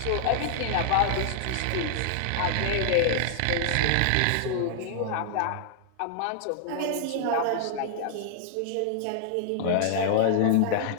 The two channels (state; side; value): different; both; correlation -0.01